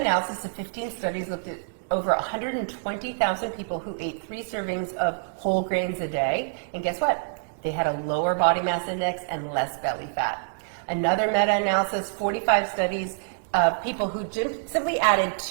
of 15 studies, looked at over 120,000 people who ate 3 servings of whole grains a day. And guess what? They had a lower body mass index and less belly fat. Another meta-analysis, 45 studies of people who simply added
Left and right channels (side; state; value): left; silent; digital silence